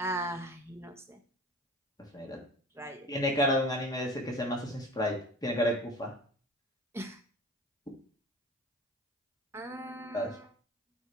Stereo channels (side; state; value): both; normal; correlation 0.40